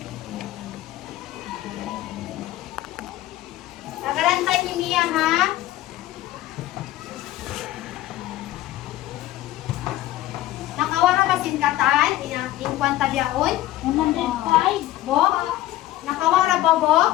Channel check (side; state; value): right; quieter; 15.3 dB